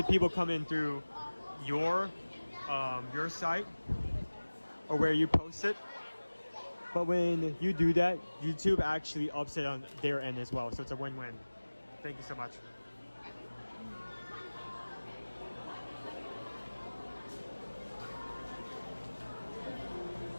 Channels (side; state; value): both; inverted; correlation -1.00